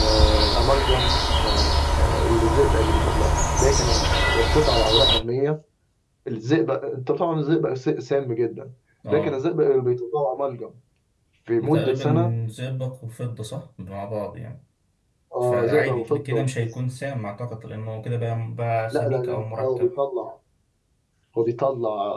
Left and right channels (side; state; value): both; identical; correlation 1.00